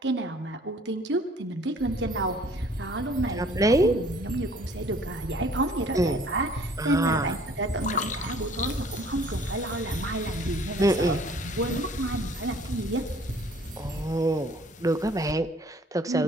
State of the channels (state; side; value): normal; both; correlation 0.55